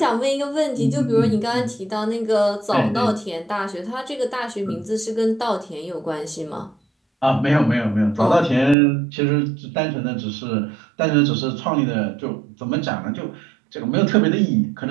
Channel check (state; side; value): drops out; left; at 8.8 s